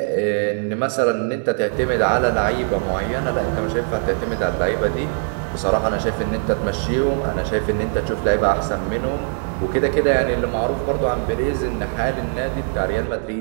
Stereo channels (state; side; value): silent; left; 58 dB below the other